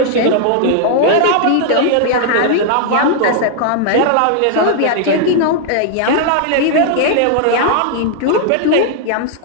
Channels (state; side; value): different; both; correlation 0.00